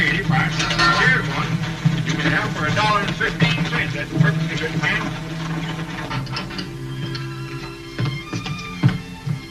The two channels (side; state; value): both; identical; correlation 1.00